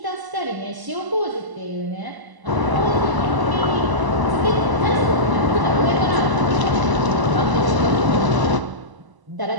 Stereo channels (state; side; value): late; left; 1.0 ms